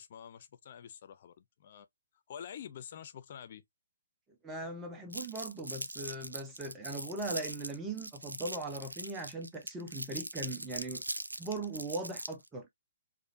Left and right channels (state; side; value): inverted; both; correlation -0.39